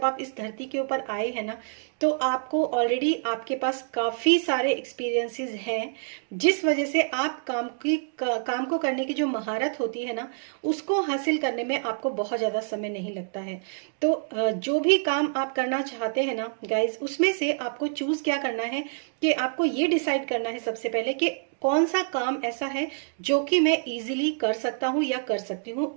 आप इस धरती के ऊपर आए हैं ना, तो आपको ऑलरेडी आपके पास काफी सारे एक्सपीरियंसेस हैं, जिस वजह से आप काम को करने की जो महारत होती है ना, उसको हासिल करने में आपको बहुत ज्यादा समय नहीं लगता है। तो जो भी काम आप करना चाहते हैं ना गाइज, उसमें से आपको चूज क्या करना है कि आपको ये डिसाइड करना है सबसे पहले कि कौन सा काम ऐसा है जो कि मैं इजीली कर सकता हूँ या कर सकती हूँ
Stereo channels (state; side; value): silent; left; digital silence